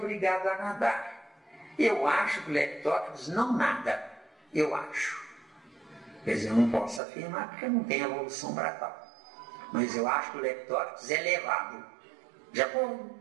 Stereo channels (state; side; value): drops out; left; at 7.0 s